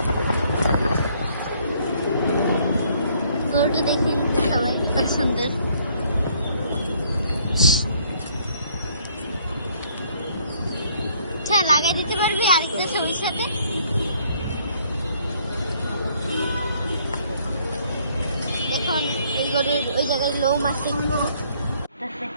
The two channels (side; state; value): both; inverted; correlation -0.64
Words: গরুটা দেখেন সবাই কত সুন্দর। আচ্ছা লাগাই দিতে পারবি আরেকটা ছবির সাথে? দেখুন এই গরুর ওই জায়গায় লোম আছে।